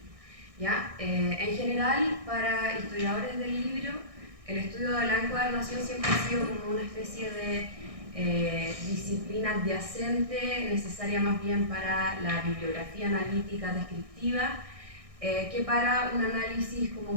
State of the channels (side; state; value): left; late; 1.6 ms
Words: ¿Ya? En general, para historiadores del libro, el estudio de la encuadernación siempre ha sido como una especie de disciplina adyacente, necesaria más bien para la bibliografía analítica descriptiva, que para un análisis como